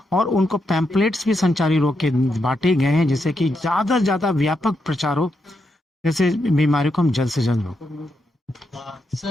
और उनको पैम्पलेट्स भी संचारी रोग के बांटे गए हैं, जिससे कि ज़्यादा से ज़्यादा व्यापक प्रचार हो, जैसे बीमारियों को हम जल्द से जल्द रोक।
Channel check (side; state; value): both; normal; correlation 0.82